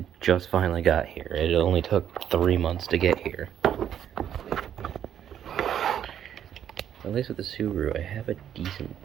just finally got here. It only took 3 months to get here. At least with the Subaru, I have a decent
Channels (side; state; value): left; quieter; 9.8 dB